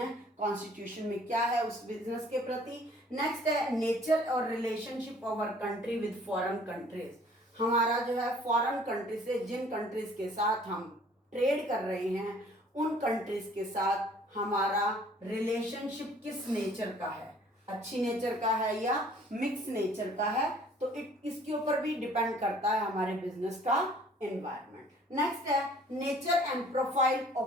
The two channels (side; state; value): both; normal; correlation 0.55